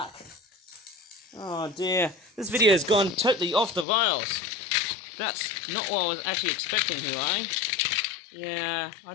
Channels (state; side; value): drops out; right; at 3.9 s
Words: Oh dear, this video has gone totally off the rails. That's not what I was actually expecting here, eh? Yeah,